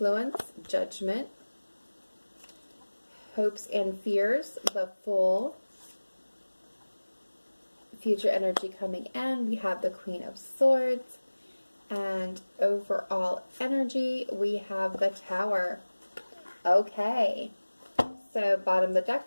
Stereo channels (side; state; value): both; inverted; correlation -1.00